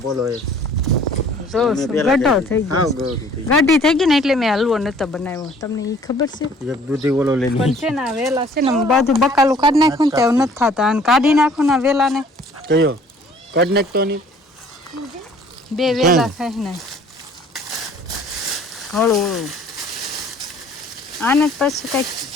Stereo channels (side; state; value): both; normal; correlation 0.55